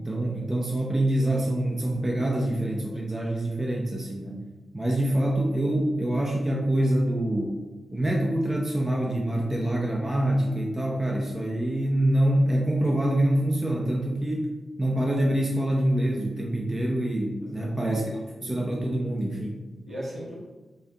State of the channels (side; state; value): both; normal; correlation 0.93